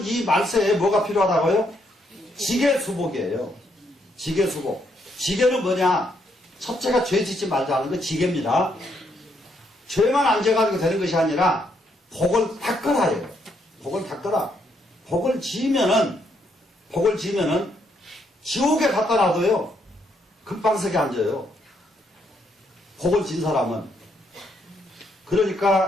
이 말세에 뭐가 필요하다고요? 지계수복이에요. 지계수복. 지계는 뭐냐? 첫째가 죄 짓지 말자는 거 지계입니다. 죄만 안 져가지고 되는 것이 아니라 복을 닦으라요. 복을 닦으라. 복을 지으면은 지옥에 갖다 놔둬요. 금방석에 앉아요. 복을 진 사람은.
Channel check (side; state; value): both; normal; correlation 0.75